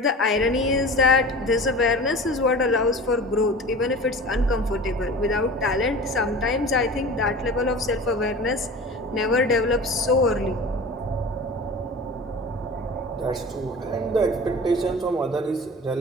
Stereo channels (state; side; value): normal; both; correlation 0.36